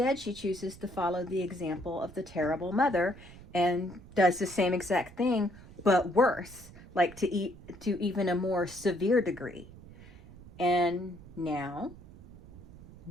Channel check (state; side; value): noise; right; rumble, 19 dB below the sound